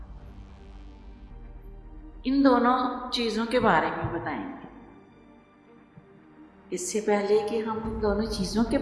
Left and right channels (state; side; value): identical; both; correlation 1.00